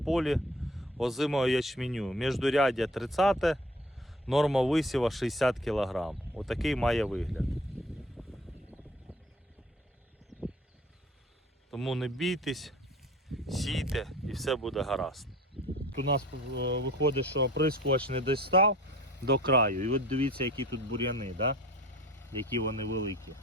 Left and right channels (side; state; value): both; normal; correlation 0.48